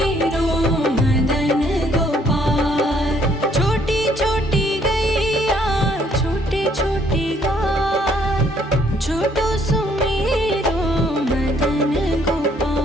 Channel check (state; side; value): normal; both; correlation 0.66